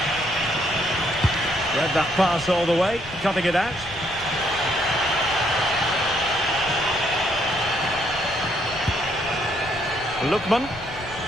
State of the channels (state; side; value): noise; left; rumble, 17 dB below the sound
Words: Read that pass all the way, cutting it out. Lookman.